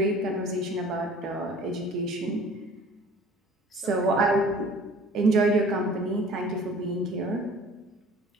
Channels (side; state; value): both; normal; correlation 0.48